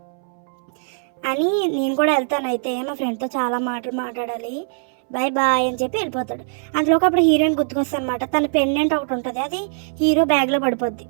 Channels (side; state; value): left; silent; 65 dB below the other